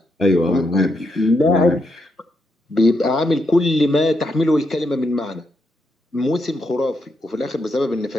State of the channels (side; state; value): both; normal; correlation 0.80